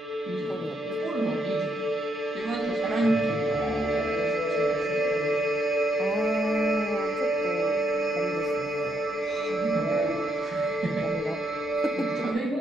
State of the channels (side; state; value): both; normal; correlation 0.77